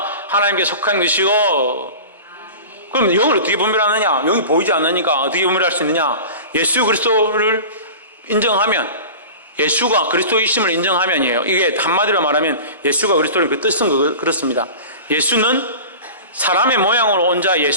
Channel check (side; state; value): both; inverted; correlation -0.35